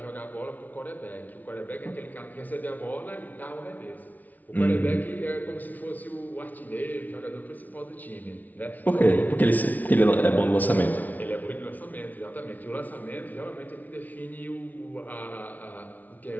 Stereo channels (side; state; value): right; late; 0.077 ms